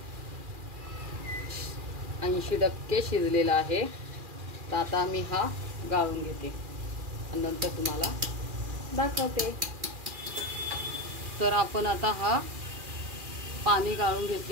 80% शिजलेला आहे. तर आता मी हा गाळून घेते आणि नंतर तुम्हाला दाखवते. तर आपण आता हा पाणी गाळून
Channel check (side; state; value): left; late; 2.4 ms